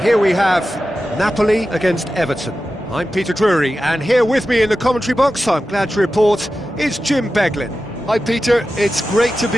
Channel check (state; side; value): normal; both; correlation 0.93